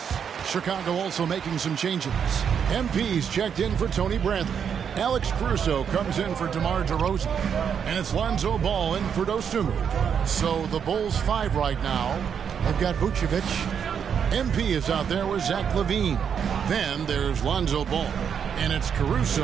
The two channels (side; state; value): left; quieter; 7.5 dB